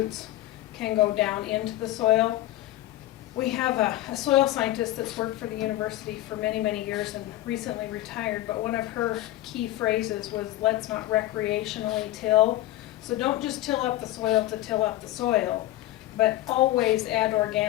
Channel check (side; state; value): right; quieter; 15.5 dB